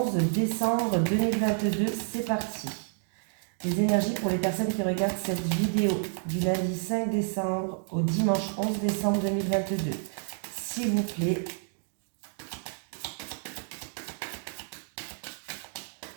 décembre 2022. C'est parti. Les énergies pour les personnes qui regardent cette vidéo du lundi 5 décembre au dimanche 11 décembre 2022. S'il vous plaît.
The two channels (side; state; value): left; silent; 58 dB below the other